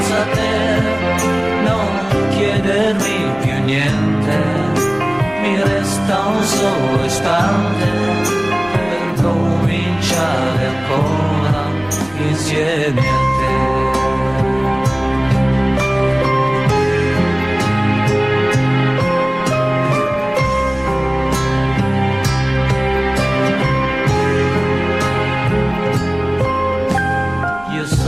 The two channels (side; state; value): left; noise; rumble, 23 dB below the sound